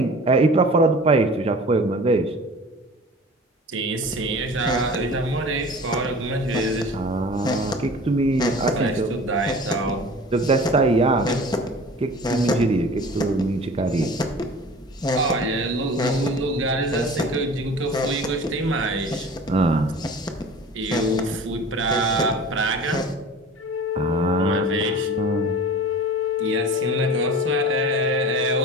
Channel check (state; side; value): normal; both; correlation 0.40